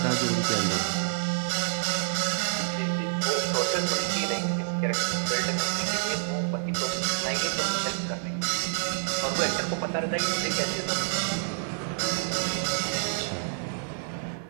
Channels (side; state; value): left; silent; digital silence